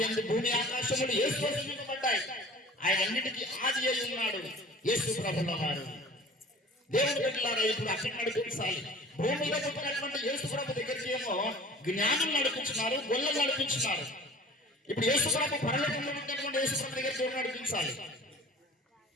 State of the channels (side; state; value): both; normal; correlation 0.44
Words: యందు భూమి ఆకాశములు యేసు సృజింపబడ్డాయి. ఆయన అన్నిటికీ ఆది అయి ఉన్నాడు యేసు ప్రభుల వారు. దేవుడు బిడ్డలారా, ఇప్పుడు అక్కడ నడిపించాలి. భూమిలో పుట్టినటువంటి యేసు ప్రభు దగ్గరికి ఏమో జ్ఞానం నడిపించినారు, గొల్లలు నడిపించినారు. ఇప్పుడు యేసు ప్రభు పరలోకంలో పుట్టినటువంటి యేసు ప్రభు దగ్గరికి ఎవరు నడిపించాలి?